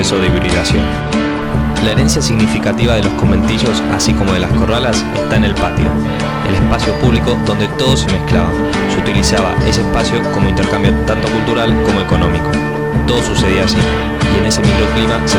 de hibridación. La herencia significativa de los conventillos, así como de las corralas, está en el patio, el espacio público donde todo se mezclaba. Se utilizaba ese espacio como intercambio tanto cultural como económico. Todo sucedía allí, y en ese microclima se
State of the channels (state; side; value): identical; both; correlation 1.00